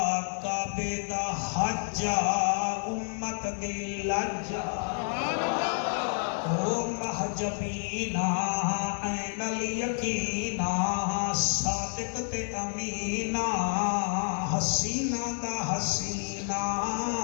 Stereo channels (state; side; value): silent; right; 58 dB below the other